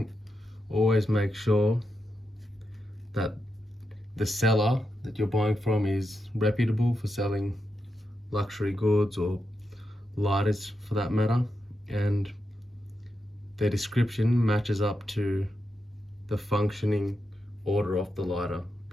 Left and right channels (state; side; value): normal; both; correlation 0.86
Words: always make sure that the seller that you're buying from is reputable for selling luxury goods or lighters for that matter, and their description matches up to the functioning order of the lighter,